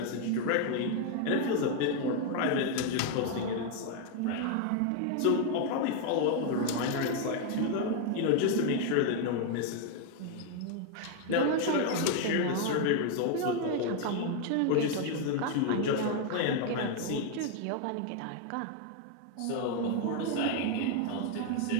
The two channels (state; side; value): different; both; correlation 0.01